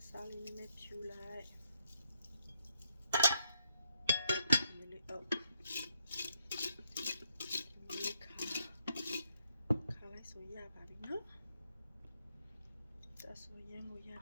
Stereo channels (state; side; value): inverted; both; correlation -0.75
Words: ်စားလေးနဲ့ဖြူလိုက်ဒီလေးခါလိုက်ဆိုရပါပြီနော်ဒါဆိုရင်ကိုရ